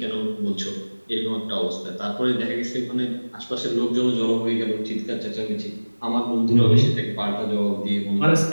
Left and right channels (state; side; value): inverted; both; correlation -1.00